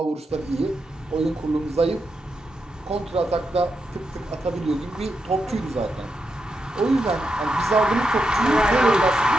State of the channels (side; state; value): both; normal; correlation 0.85